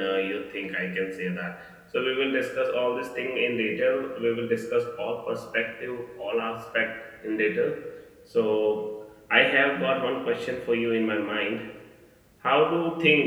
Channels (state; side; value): identical; both; correlation 1.00